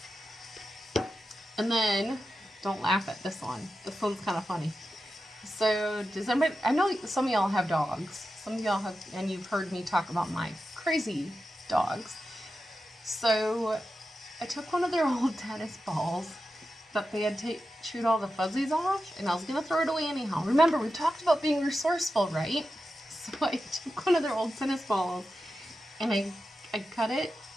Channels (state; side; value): normal; both; correlation 0.91